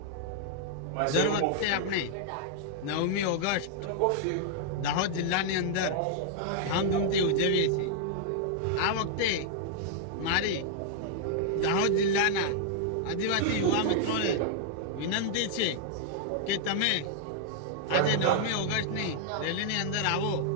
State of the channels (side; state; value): both; different; correlation -0.01